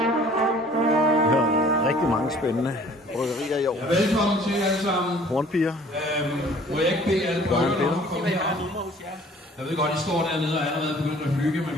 Rigtig mange spændende bryggerier i år. Ja, velkommen til alle sammen. Hornpiger. Må jeg ikke bede alle bryggerne om at komme herop? Jeg ved godt, I står dernede og er allerede begyndt at hygge, men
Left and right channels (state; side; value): normal; both; correlation 0.53